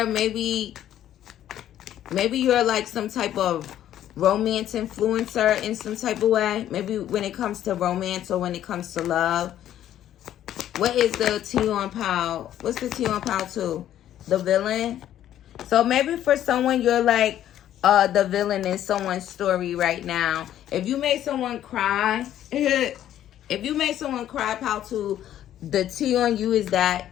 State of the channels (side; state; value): right; quieter; 11.6 dB